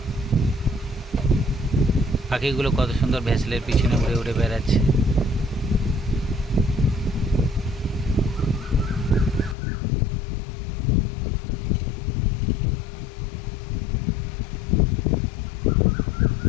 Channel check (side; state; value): right; drops out; at 9.6 s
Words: পাখিগুলো কত সুন্দর ভেসেলের পিছনে উড়ে উড়ে বেড়াচ্ছে।